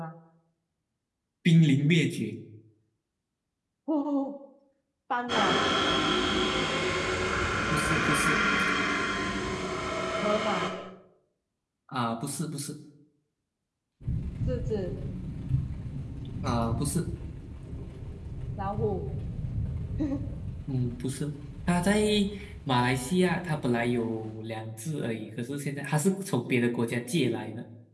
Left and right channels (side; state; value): both; identical; correlation 1.00